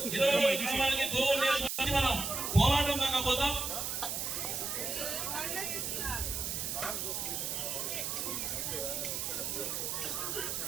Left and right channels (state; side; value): noise; right; hiss, 2 dB below the sound